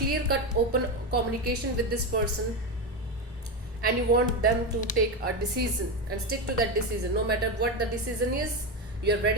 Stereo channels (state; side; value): normal; both; correlation 0.14